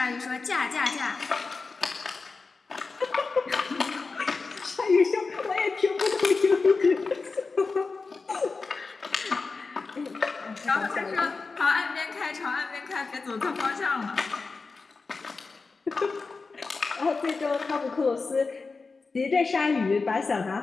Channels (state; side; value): quieter; right; 4.2 dB